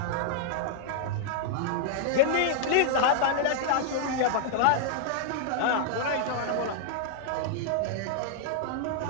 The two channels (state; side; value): different; both; correlation -0.01